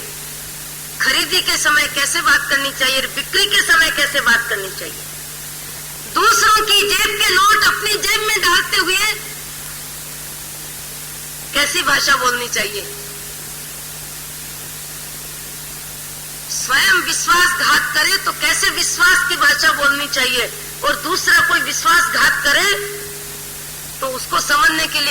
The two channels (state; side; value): identical; both; correlation 1.00